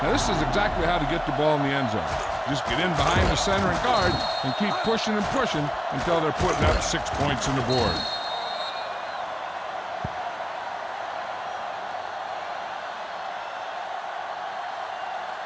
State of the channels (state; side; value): identical; both; correlation 1.00